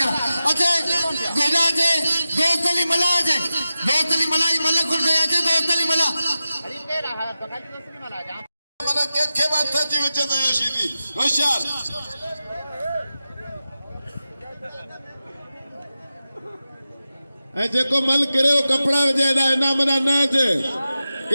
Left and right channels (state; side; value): inverted; both; correlation -0.93